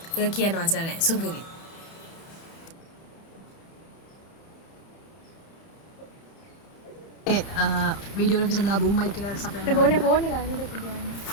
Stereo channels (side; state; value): right; late; 30 ms